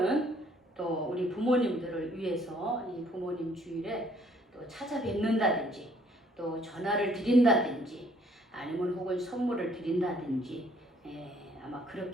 또 우리 부모님들을 위해서 이 부모님 주일에 또 찾아뵙는다든지 또 전화를 드린다든지 아니면 혹은 선물을 드린다든지 아마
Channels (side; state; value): both; normal; correlation 0.63